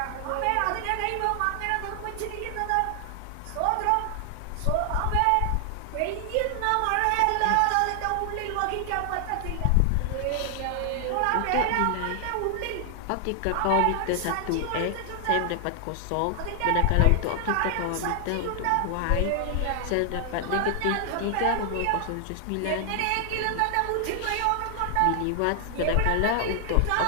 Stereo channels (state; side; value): different; both; correlation 0.00